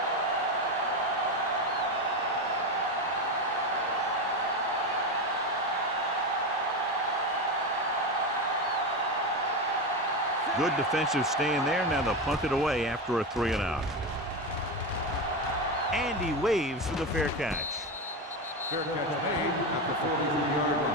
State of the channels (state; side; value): normal; both; correlation 0.16